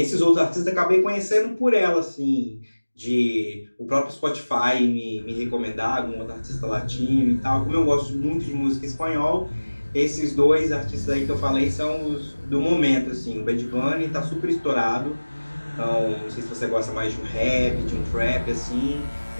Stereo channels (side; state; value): both; inverted; correlation -1.00